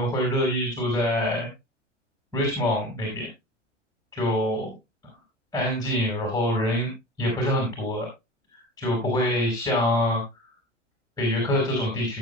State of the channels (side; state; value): both; normal; correlation 0.36